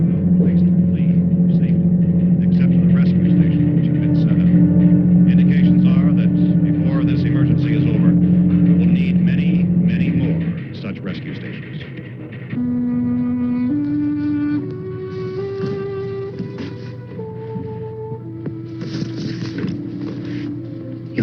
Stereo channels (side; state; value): both; identical; correlation 1.00